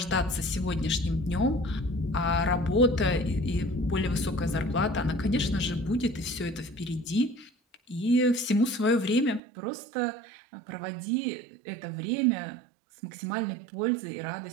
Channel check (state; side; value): drops out; left; at 9.4 s